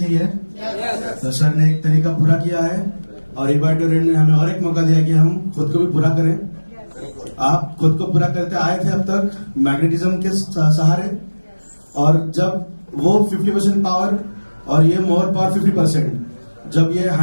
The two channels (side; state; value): both; inverted; correlation -1.00